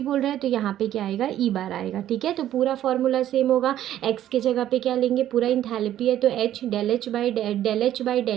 रहा है तो यहाँ पे क्या आएगा, ई बार आएगा, ठीक है। तो पूरा फॉर्मूला सेम होगा। एक्स के जगह पे क्या लेंगे, पूरा इंथैल्पी है तो H, del H by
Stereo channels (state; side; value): quieter; left; 12.1 dB